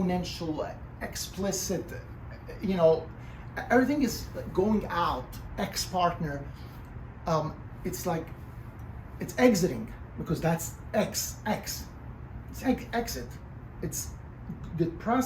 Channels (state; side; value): identical; both; correlation 1.00